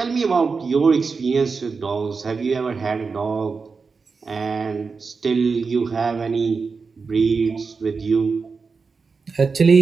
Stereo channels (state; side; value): quieter; left; 4.8 dB